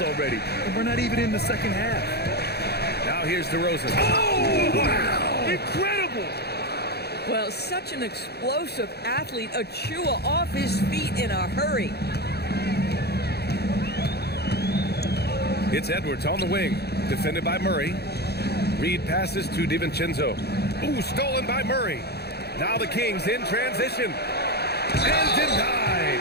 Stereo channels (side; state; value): right; late; 0.47 ms